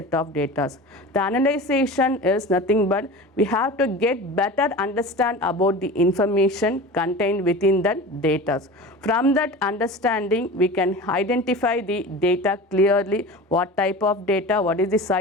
of data. The analyzation is nothing but we have to get better understand about the information contained within that data. From that understanding, we can identify the data clearly, what type of data, what is the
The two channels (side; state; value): both; normal; correlation 0.33